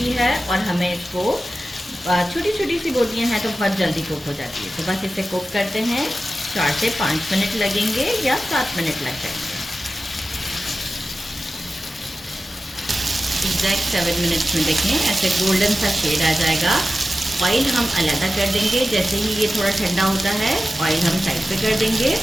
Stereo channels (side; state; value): both; normal; correlation 0.94